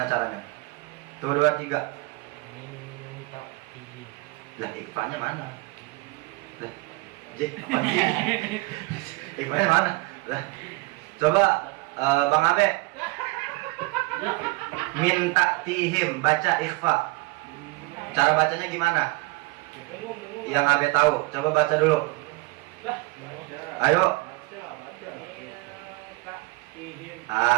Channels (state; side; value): quieter; left; 24.3 dB